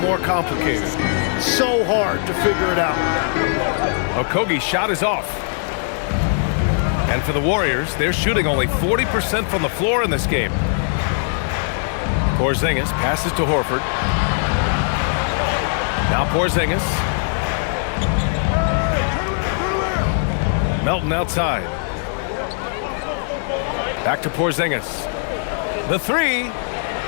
complicated. So hard to figure it out. Okogie's shot is off. And for the Warriors, they're shooting only 40% from the floor in this game. Porzingis passes to Horford. Now Porzingis. Melton outside. Back to Porzingis. The three.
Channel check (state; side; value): silent; right; 66 dB below the other